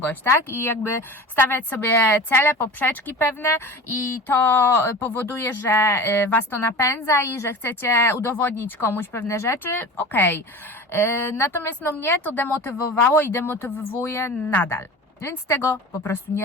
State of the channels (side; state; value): both; normal; correlation 0.34